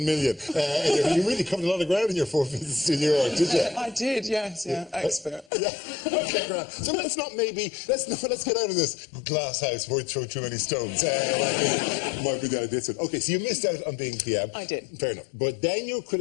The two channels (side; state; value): right; drops out; at 5.5 s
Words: million? You really covered a lot of ground in your 4 visits to New York, did you? I did, yes, expert. Yeah. Okay, great. So let's get out of this glass house where we throw too many stones. Might be down this one. Okay, so you missed out on being PM. I did. Fair enough. But then you're